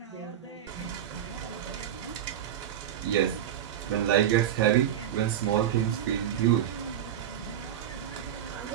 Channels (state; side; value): quieter; left; 10.4 dB